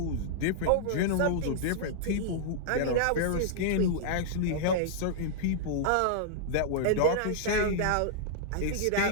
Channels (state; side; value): different; both; correlation -0.02